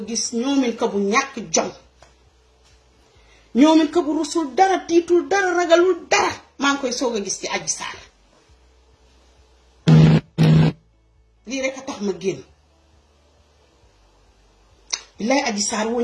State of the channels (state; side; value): identical; both; correlation 1.00